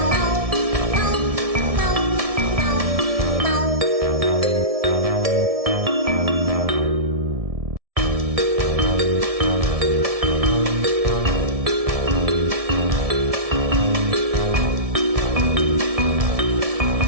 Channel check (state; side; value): late; left; 1.7 ms